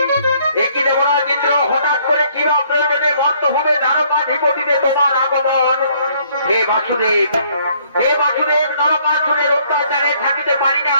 একই দেবরাজ ইন্দ্র হঠাৎ করে কি প্রয়োজনে মর্তভূমে দ্বারকাধিপতিতে তোমার আগমন? হে বাসুদেব, নরকাসুরের অত্যাচারে থাকিতে পারি না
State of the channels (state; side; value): inverted; both; correlation -0.65